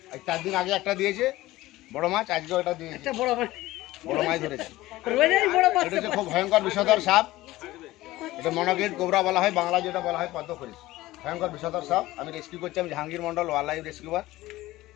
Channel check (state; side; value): quieter; right; 17.4 dB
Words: 4 দিন আগে একটা দিয়েছে বড় মাছ, আজকেও এটা দিয়েছে বড় মাছ ধরেছে। এটা হচ্ছে খুব ভয়ঙ্কর বিষধর সাপ। এটা মনোকিলিট কোবরা বলা হয়, বাংলা যেটা বলা হয় পদ্ম খরিস। ভয়ঙ্কর বিষধর সাপ। আমি রেস্কিউ করছি, আমি Jahangir Mondal, wildlife rescuer.